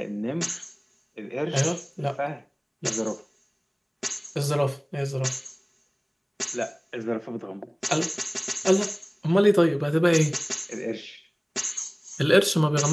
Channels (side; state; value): both; identical; correlation 1.00